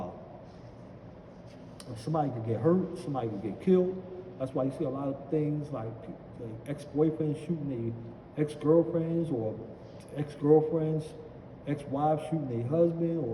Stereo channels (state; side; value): identical; both; correlation 1.00